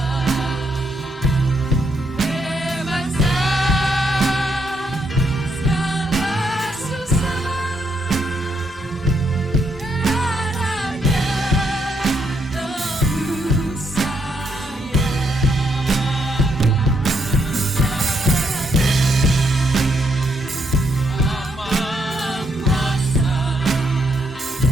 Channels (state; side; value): normal; both; correlation 0.76